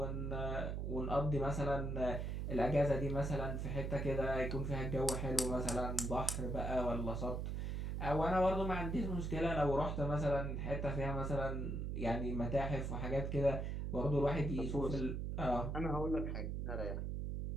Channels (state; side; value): noise; right; hum, 2 dB below the sound